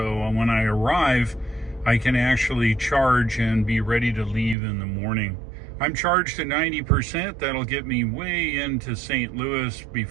when I arrive, I can actually charge and be ready to leave in the morning. I'm charged to 90%. That'll get me way into St. Louis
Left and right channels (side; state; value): left; drops out; at 4.5 s